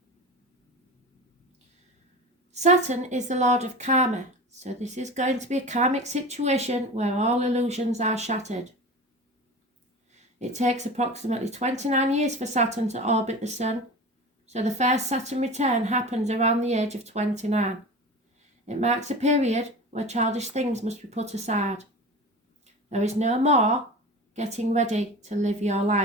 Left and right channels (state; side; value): normal; both; correlation 0.33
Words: Saturn is the Lord of Karma, so this is going to be a karmic situation where all illusions are shattered. It takes approximately 29 years for Saturn to orbit the Sun, so the first Saturn return happens around the age of 29. It marks a period where childish things must be put aside. There is no more getting ready to live your